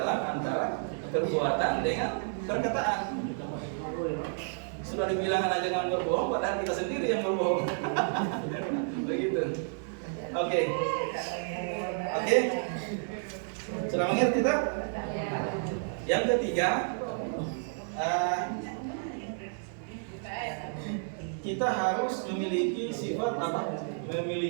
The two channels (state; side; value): silent; left; digital silence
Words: antara perbuatan dengan perkataan. Sudah dibilang anak jangan berbohong, padahal kita sendiri yang berbohong. Begitu. Oke. Sudah mengerti tak? Yang ketiga, kita harus memiliki sifat apa?